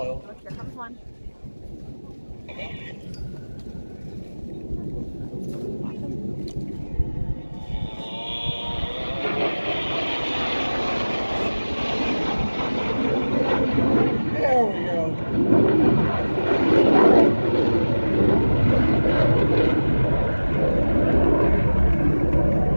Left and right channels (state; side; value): inverted; both; correlation -1.00